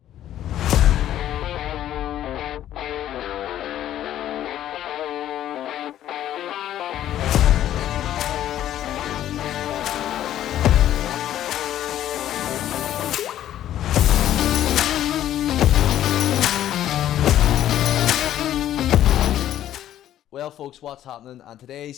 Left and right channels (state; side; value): quieter; right; 12.0 dB